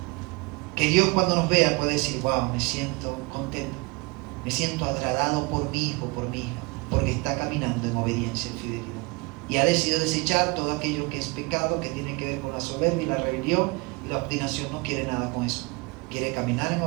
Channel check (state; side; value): quieter; left; 27.1 dB